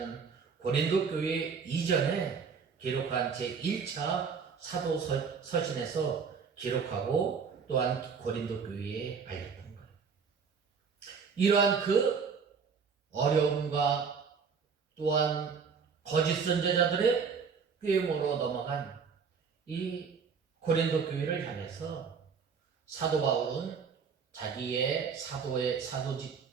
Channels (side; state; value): left; quieter; 5.9 dB